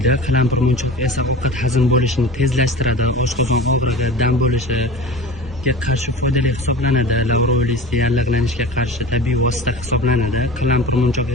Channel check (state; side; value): normal; both; correlation 0.35